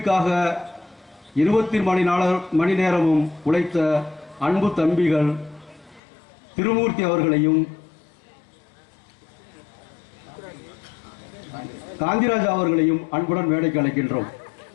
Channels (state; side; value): drops out; right; at 6.0 s